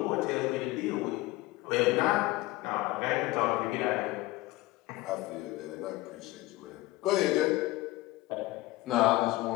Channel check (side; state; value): right; quieter; 19.0 dB